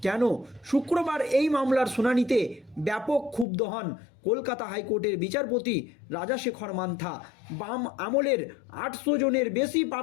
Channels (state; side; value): drops out; right; at 3.5 s